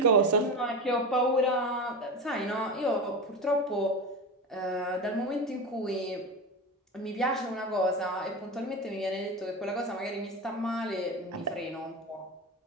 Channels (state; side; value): normal; both; correlation 0.23